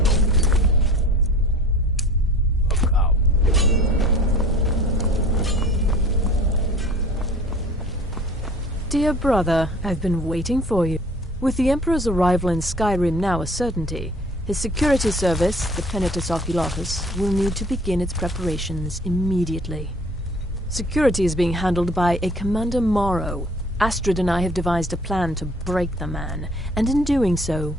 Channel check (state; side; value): normal; both; correlation 0.48